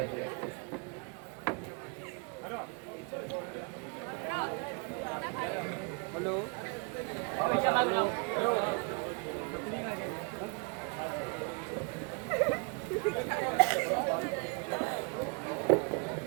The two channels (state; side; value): quieter; left; 34.9 dB